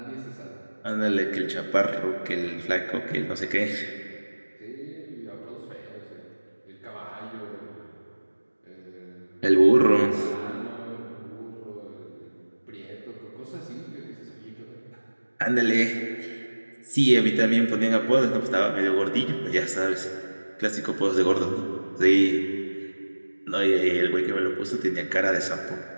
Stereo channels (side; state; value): both; inverted; correlation -1.00